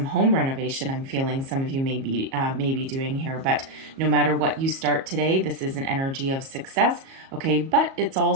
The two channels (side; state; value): left; late; 37 ms